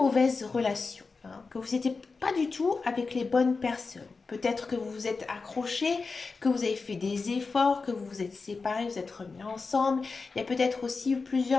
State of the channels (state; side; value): quieter; right; 4.3 dB